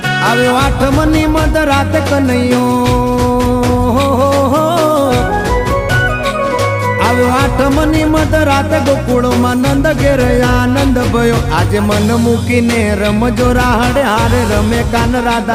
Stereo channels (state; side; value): identical; both; correlation 1.00